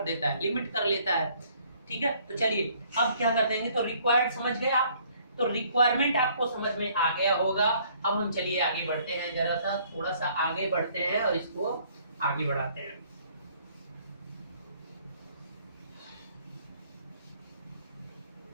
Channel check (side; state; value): both; inverted; correlation -0.61